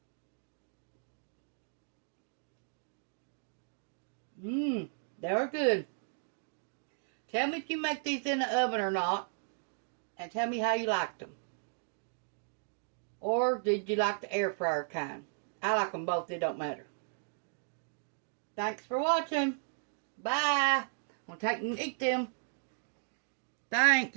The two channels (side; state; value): left; silent; digital silence